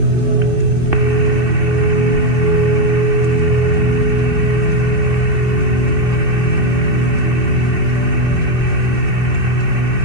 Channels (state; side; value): late; left; 2.7 ms